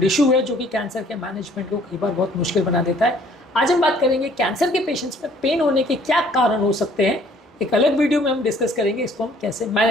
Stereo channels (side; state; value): both; normal; correlation 0.58